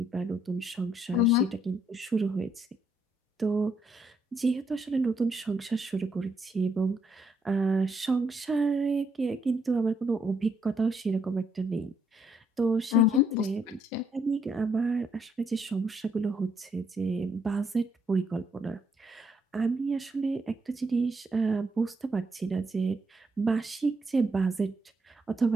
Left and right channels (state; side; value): normal; both; correlation 0.74